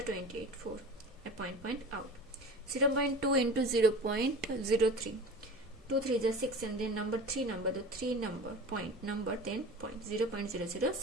28, 4 a point out. 0.2 into 0.03, 2 3s are 6 and then number 3 number, the 3 number point number, then point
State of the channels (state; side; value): normal; both; correlation 0.36